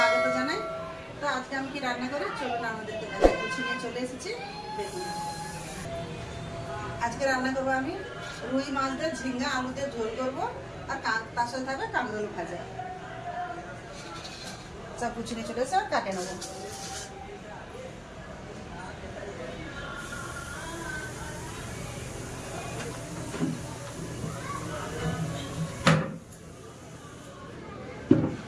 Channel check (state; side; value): identical; both; correlation 1.00